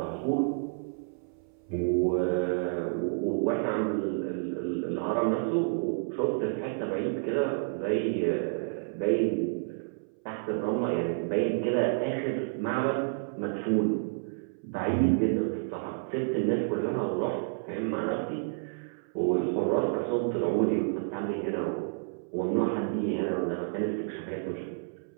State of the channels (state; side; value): silent; left; 58 dB below the other